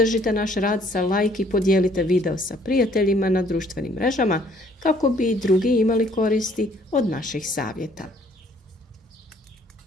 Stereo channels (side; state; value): both; normal; correlation 0.61